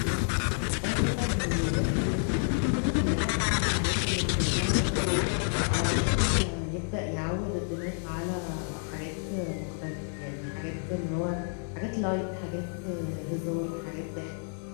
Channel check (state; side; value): silent; right; 58 dB below the other